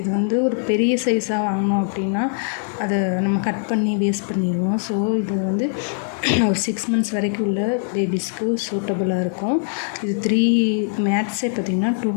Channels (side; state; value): right; silent; 65 dB below the other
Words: வந்து ஒரு பெரிய சைஸாக வாங்கினோம் அப்படின்னா அதை நம்ம கட் பண்ணி வேஸ்ட் பண்ணிடுவோம். ஸோ இது வந்து ஒரு 6 months வரைக்கும் உள்ள பேபிஸ்க்கு சூட்டபுளாக இருக்கும். இது 3 மேட்ஸே பார்த்திங்கன்னா